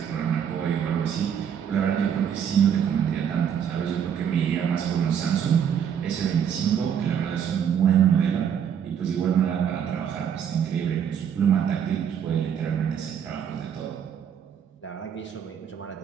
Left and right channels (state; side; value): quieter; left; 8.3 dB